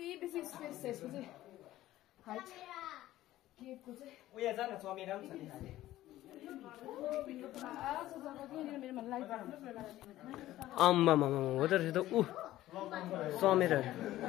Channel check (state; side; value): quieter; right; 14.9 dB